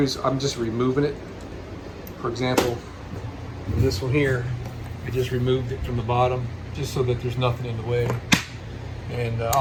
I'm just removing it. For example, this one here, I just removed it from the bottom just so that there's nothing in the way. And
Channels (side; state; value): both; identical; correlation 1.00